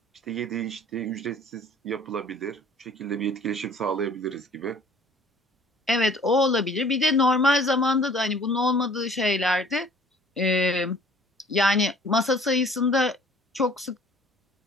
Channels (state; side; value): normal; both; correlation 0.53